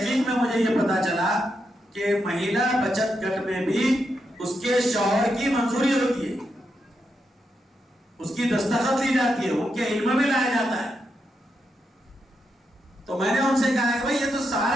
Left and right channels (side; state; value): both; normal; correlation 0.83